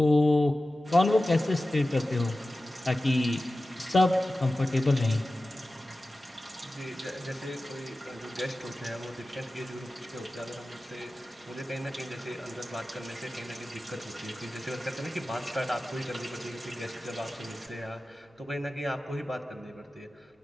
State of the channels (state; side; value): normal; both; correlation 0.95